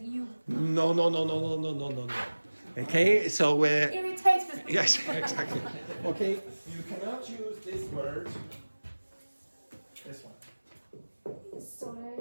you. No. Okay, so Irritates me. yes, exactly. Okay, you cannot use this word. This one.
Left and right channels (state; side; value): inverted; both; correlation -1.00